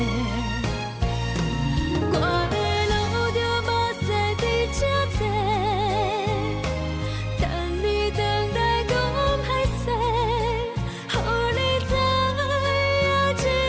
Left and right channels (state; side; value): identical; both; correlation 1.00